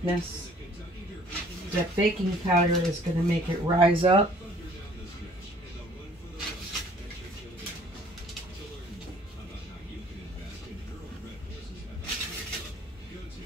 That baking powder is going to make it rise up.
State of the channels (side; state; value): both; normal; correlation 0.56